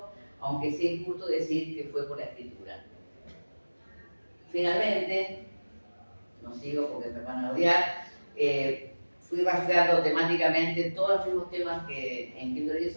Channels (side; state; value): both; inverted; correlation -1.00